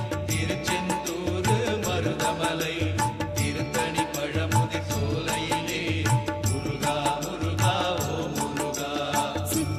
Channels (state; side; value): identical; both; correlation 1.00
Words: திருச்செந்தூர் மருதமலை திருத்தணி பழமுதி சோலையிலே முருகா முருகா ஓம் முருகா.